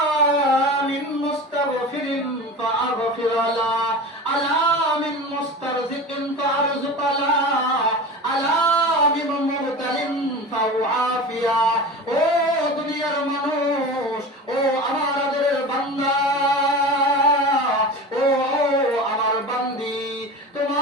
মিন মুস্তাগফিরিন ফাআগফির লা, আলা মিন মুস্তারজিকিন ফাআরযুক লা, আলা মিন মুবতালিন ফাউআফিয়া। ও দুনিয়ার মানুষ, ও আমার আদরের বান্দা, ও আমার বান্দি,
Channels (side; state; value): both; normal; correlation 0.32